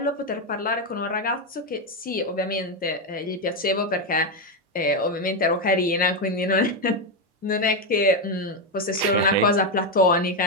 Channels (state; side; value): normal; both; correlation 0.07